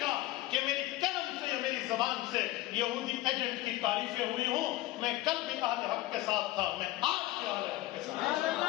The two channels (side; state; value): right; quieter; 17.0 dB